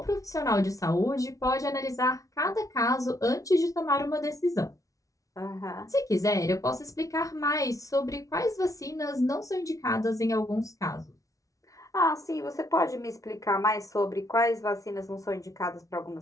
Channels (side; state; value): right; late; 0.17 ms